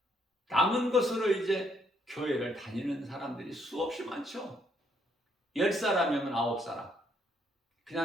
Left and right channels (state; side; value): normal; both; correlation 0.70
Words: 남은 것으로 이제 교회를 다니는 사람들이 수없이 많죠. 10사람이면 9사람.